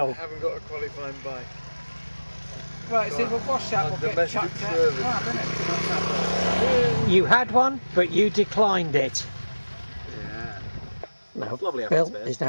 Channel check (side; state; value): both; inverted; correlation -1.00